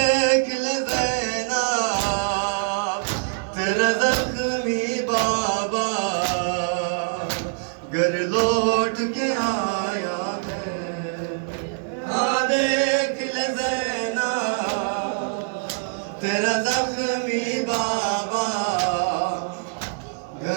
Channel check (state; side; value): silent; left; digital silence